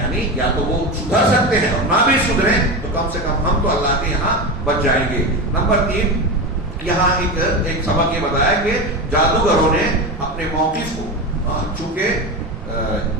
یا تو وہ سدھر سکتے ہیں اور نہ بھی سدھریں تو کم سے کم ہم تو اللہ کے یہاں بچ جائیں گے۔ نمبر 3 یہاں ایک سبق یہ بتایا کہ جادوگروں نے اپنے موقف کو چونکہ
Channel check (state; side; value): normal; both; correlation 0.21